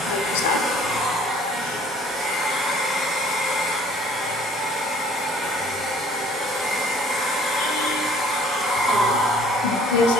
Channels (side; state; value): both; normal; correlation 0.55